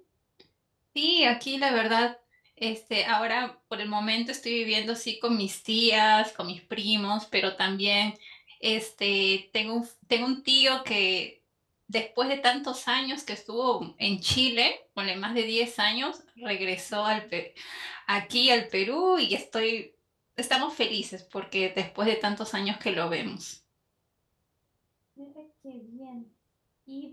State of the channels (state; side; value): identical; both; correlation 1.00